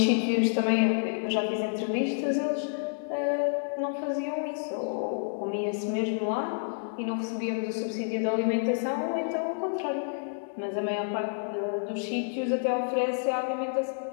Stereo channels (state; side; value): silent; right; digital silence